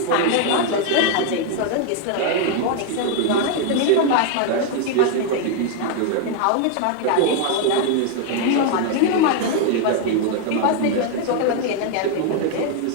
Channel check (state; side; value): different; both; correlation 0.00